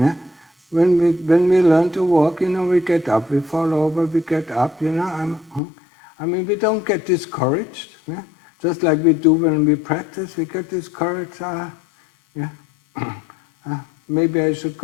When we learn to walk, we get up, we fall over, we get up, we don't get discouraged, yeah? Just like we do when we practice, we get discouraged, maybe I should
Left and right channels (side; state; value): right; drops out; at 5.6 s